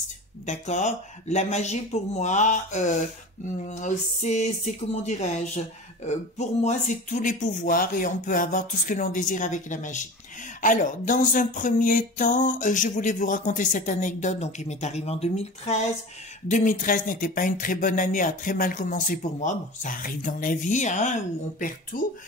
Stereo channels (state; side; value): normal; both; correlation 0.34